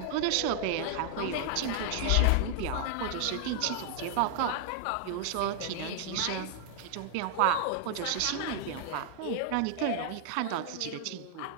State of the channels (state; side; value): different; both; correlation 0.00